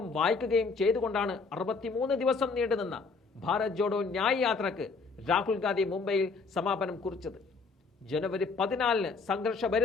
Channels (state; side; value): quieter; right; 4.5 dB